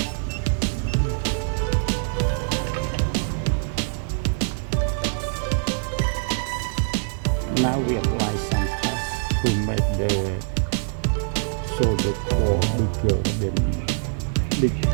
Now we apply some paste to make the solder core bigger than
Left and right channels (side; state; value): left; silent; 58 dB below the other